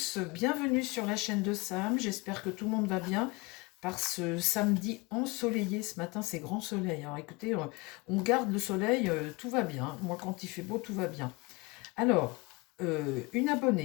bienvenue sur la chaîne de Sam, j'espère que tout le monde va bien par ce samedi ensoleillé. Ce matin c'est grand soleil, alors écoutez, on garde le soleil, tout va bien, moi quand il fait beau tout va bien. Alors, une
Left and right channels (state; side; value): quieter; right; 25.8 dB